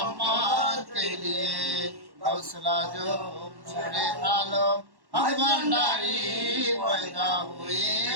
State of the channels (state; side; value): late; left; 1.1 ms